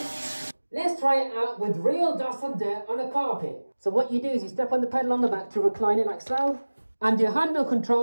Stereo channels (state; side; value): inverted; both; correlation -1.00